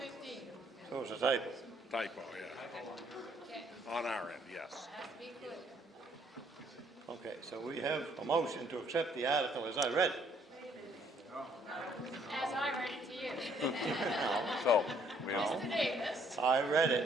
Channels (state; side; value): normal; both; correlation 0.65